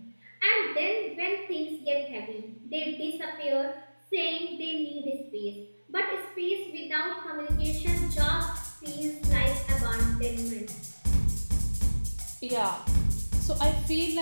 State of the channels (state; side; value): inverted; both; correlation -1.00